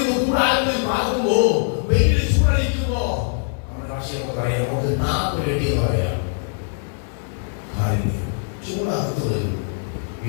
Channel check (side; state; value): right; silent; digital silence